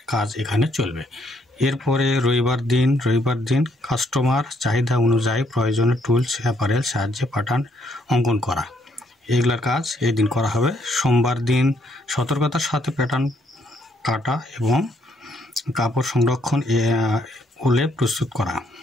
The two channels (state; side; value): normal; both; correlation 0.71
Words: কাজ এখানে চলবে। এরপরে রবিবার দিন কাস্টমার চাহিদা অনুযায়ী প্রয়োজনীয় টুলস অ্যাপারেল সাহায্যে প্যাটার্ন অঙ্কন করা, এগুলার কাজ এই দিন করা হবে। সোমবার দিন সতর্কতার সাথে প্যাটার্ন কাটা এবং কাপড় সংরক্ষণ উলে প্রস্তুত করা,